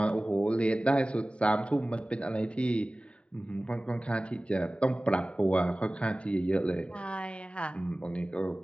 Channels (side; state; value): right; late; 0.059 ms